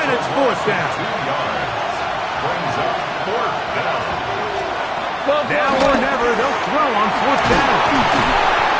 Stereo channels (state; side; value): identical; both; correlation 1.00